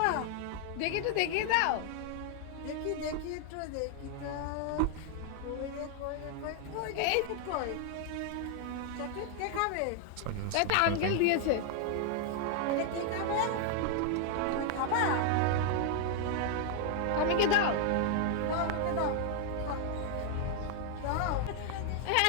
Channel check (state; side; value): different; both; correlation 0.00